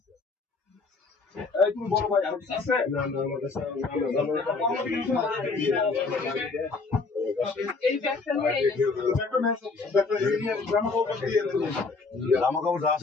তুমি বলো ভাই আর কিছু আছে জামা কাপড় যা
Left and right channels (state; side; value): quieter; right; 4.1 dB